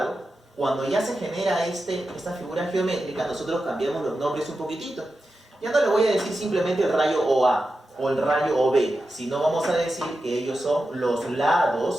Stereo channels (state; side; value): normal; both; correlation 0.91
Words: cuando ya se genera esta figura geométrica, nosotros cambiamos los nombres un poquitito. Ya no le voy a decir simplemente el rayo OA o el rayo OB, sino vamos a decir que ellos son los